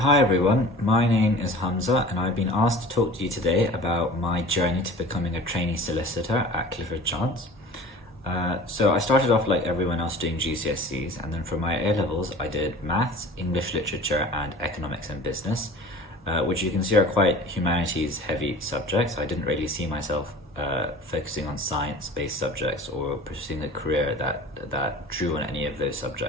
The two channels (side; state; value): both; normal; correlation 0.42